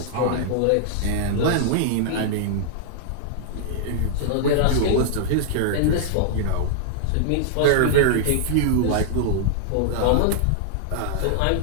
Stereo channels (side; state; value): both; different; correlation -0.01